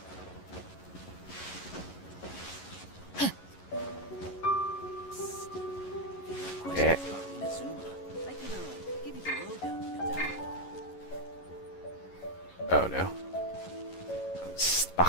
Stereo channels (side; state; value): right; late; 11 ms